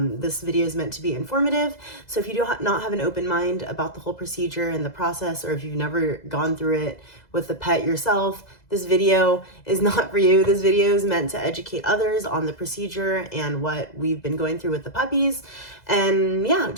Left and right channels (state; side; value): late; right; 2.0 ms